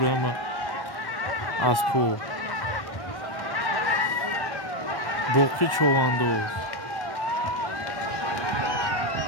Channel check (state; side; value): late; right; 1.1 ms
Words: ama aspo. Boqi chovandoz.